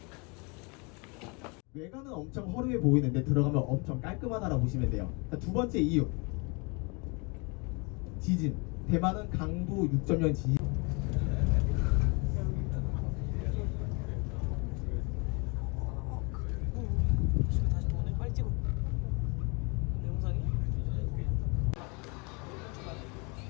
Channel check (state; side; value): quieter; right; 30.8 dB